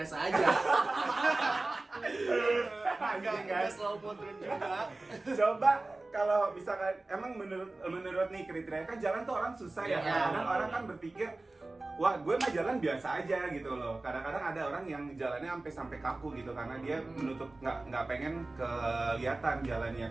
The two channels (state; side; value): quieter; left; 3.1 dB